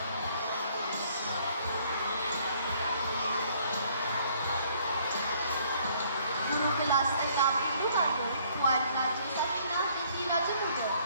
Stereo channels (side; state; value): both; inverted; correlation -0.62